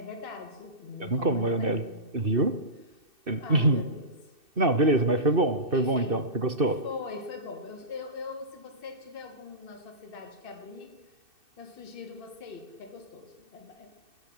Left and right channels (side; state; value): left; late; 2.6 ms